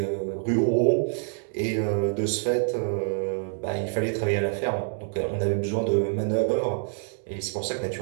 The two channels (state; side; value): silent; left; digital silence